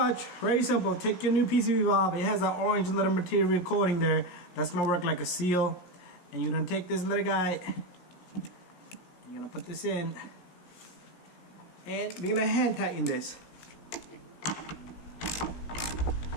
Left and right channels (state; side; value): late; right; 17 ms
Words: very simple. Take your new PCV valve. It has that orange little material coating there. That's gonna work like a seal. And you're gonna take this little guy. You're gonna put this in. And we're gonna hand tighten this.